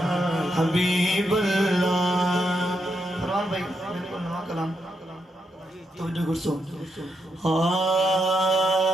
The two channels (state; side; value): normal; both; correlation 0.81